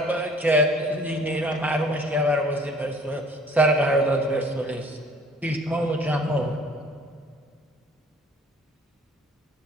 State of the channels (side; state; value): both; normal; correlation 0.52